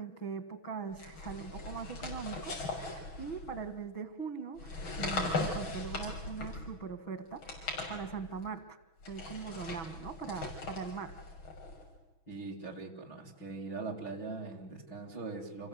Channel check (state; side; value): late; right; 6.2 ms